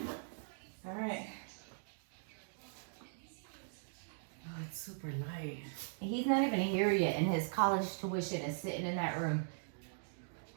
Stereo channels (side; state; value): left; silent; digital silence